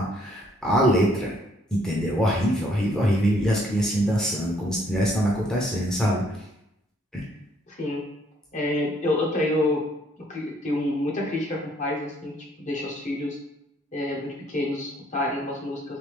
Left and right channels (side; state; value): both; normal; correlation 0.66